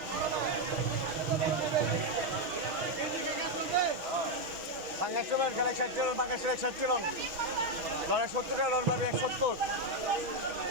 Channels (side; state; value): left; late; 6.3 ms